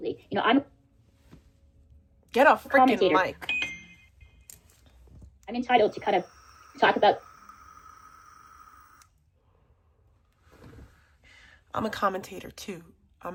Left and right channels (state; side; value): identical; both; correlation 1.00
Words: You know, I'm Get a freaking commentator. mic. I'm entitled to kind of talk about. I'm a commentator too.